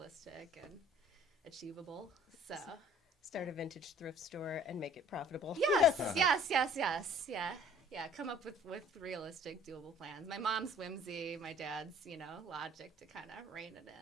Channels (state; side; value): normal; both; correlation 0.54